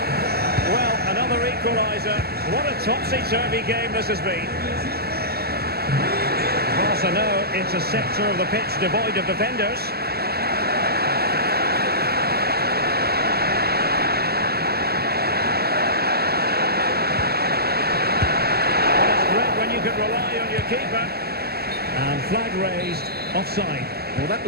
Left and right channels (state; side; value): late; left; 0.46 ms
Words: Well, another equaliser. What a topsy-turvy game this has been. Barca know it's a sector of the pitch devoid of defenders. Rely on your keeper. And flag raised, offside. Well, that